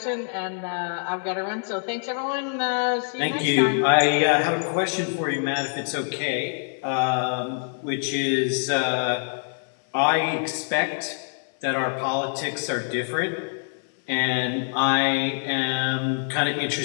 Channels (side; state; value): right; silent; 62 dB below the other